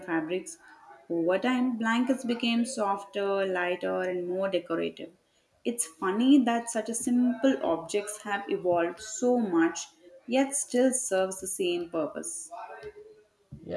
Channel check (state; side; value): identical; both; correlation 1.00